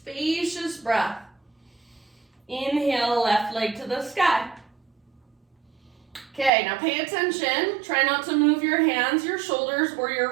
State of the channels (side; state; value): left; drops out; at 6.5 s